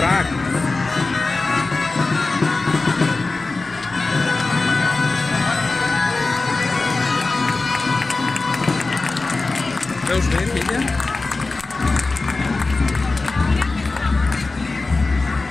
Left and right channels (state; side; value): quieter; right; 3.6 dB